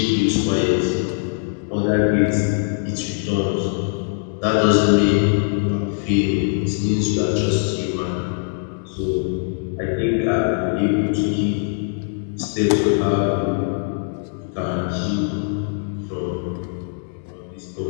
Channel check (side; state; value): right; silent; digital silence